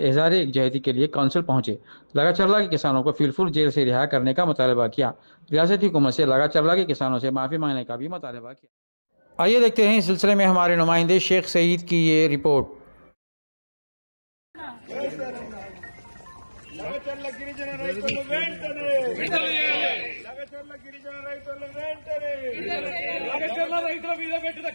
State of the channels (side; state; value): both; inverted; correlation -1.00